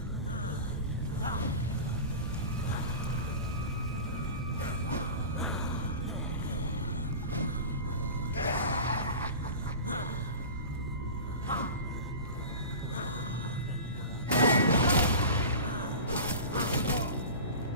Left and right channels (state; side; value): inverted; both; correlation -0.33